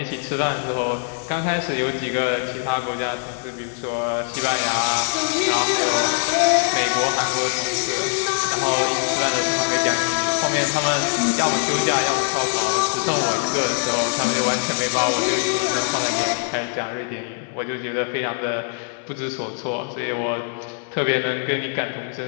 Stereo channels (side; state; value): right; silent; 61 dB below the other